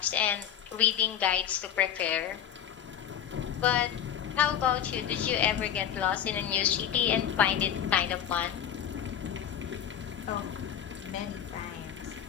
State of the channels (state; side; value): quieter; right; 9.7 dB